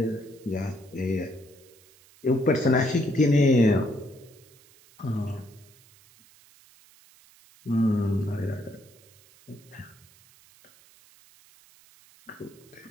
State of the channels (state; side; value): noise; right; hiss, 27 dB below the sound